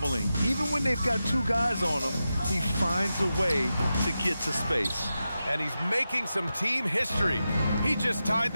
Even when they've got 2 guys on him, he finds a way to get to space. And he's making some team history. He just tied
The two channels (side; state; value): both; inverted; correlation -0.91